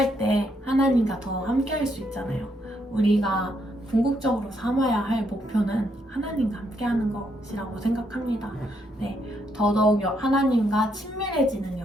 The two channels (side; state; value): both; normal; correlation 0.75